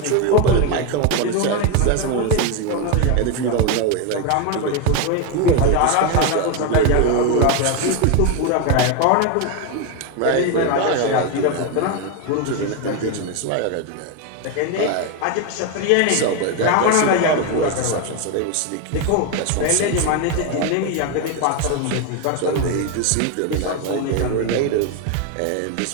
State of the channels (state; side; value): different; both; correlation 0.02